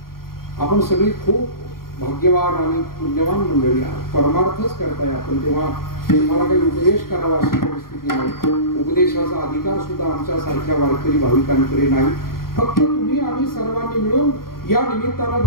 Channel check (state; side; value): late; right; 0.93 ms